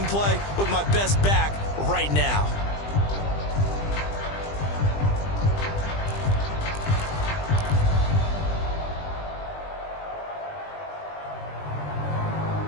play with my best back right now.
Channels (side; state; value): right; late; 20 ms